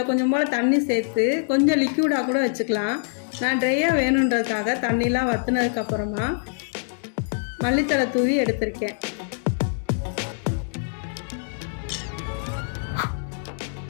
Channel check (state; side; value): silent; right; 62 dB below the other